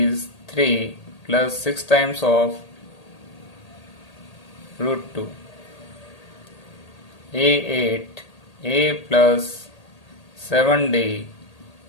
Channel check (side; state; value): right; late; 1.8 ms